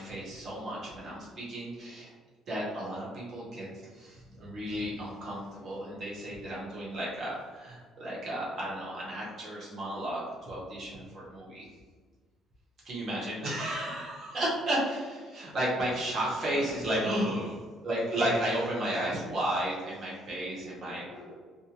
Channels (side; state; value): both; normal; correlation 0.68